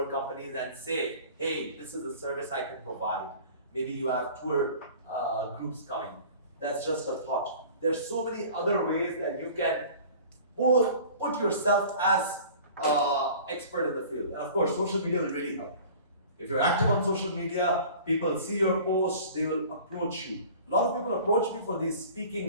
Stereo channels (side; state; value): both; inverted; correlation -0.44